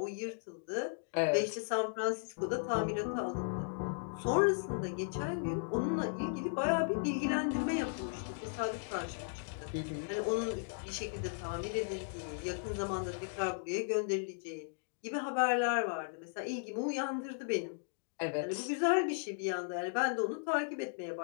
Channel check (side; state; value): right; silent; digital silence